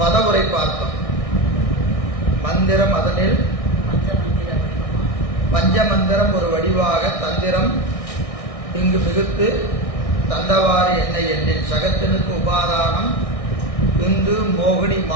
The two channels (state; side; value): late; right; 1.6 ms